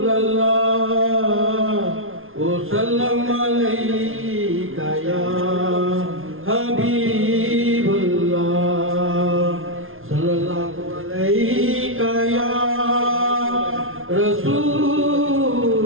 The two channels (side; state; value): left; late; 0.60 ms